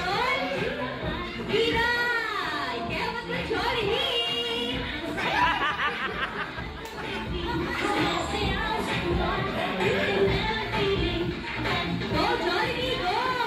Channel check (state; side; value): identical; both; correlation 1.00